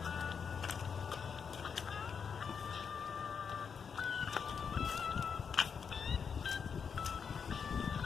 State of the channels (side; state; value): right; quieter; 6.4 dB